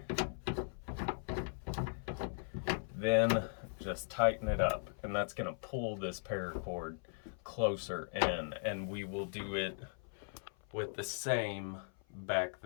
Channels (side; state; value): right; silent; 52 dB below the other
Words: Then just tighten it up, and that's going to pull this paracord closer in, and we will do it with the same back